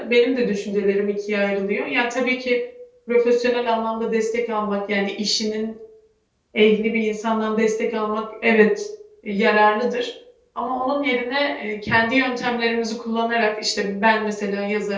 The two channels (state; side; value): identical; both; correlation 1.00